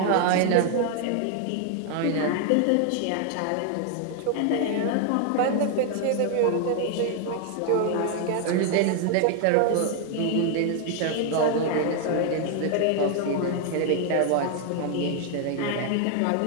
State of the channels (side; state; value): both; different; correlation 0.00